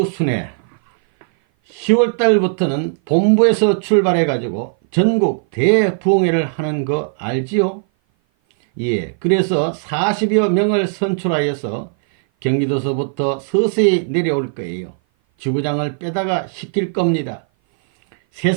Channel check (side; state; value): left; silent; 57 dB below the other